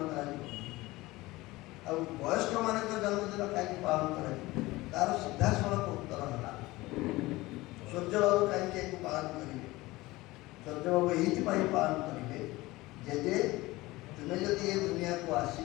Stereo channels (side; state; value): right; quieter; 19.8 dB